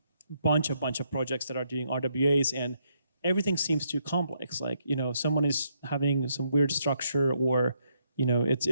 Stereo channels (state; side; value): inverted; both; correlation -0.76